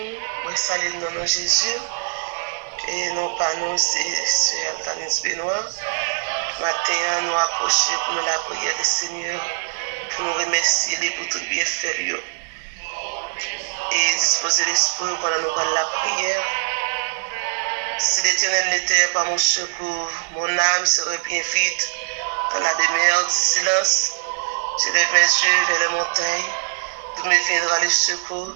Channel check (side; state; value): left; silent; 64 dB below the other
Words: moi salue dans nom Jésus. Et non pas nous, c'est Altanis Benoît. Matin, nous approcher pour nous la prière du Seigneur, pour nous remercier pour tout bien faire. Et disposer l'esprit pendant nous parler la prière. Si l'Éternel n'était pas mon secours, mon âme serait bien vite dans la demeure du silence. Je lève mes yeux vers les montagnes, d'où me viendra le secours.